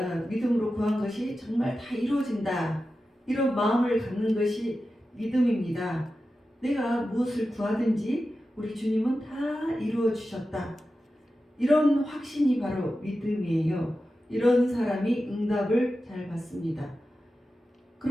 믿음으로 구한 것이 정말 다 이루어진다, 이런 마음을 갖는 것이 믿음입니다. 내가 무엇을 구하든지 우리 주님은 다 이루어 주셨다, 이런 확신이 바로 믿음이에요. 이런 사람이 응답을 잘 받습니다.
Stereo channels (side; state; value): both; normal; correlation 0.92